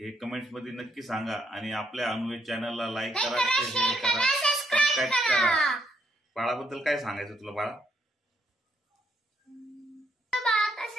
कमेंट्स मध्ये नक्की सांगा. आणि आपल्या अनुवेद चॅनलला लाईक करा, शेअर करा, सबस्क्राईब करा. बाळाबद्दल काय सांगायचं तुला बाळा?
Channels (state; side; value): normal; both; correlation 0.74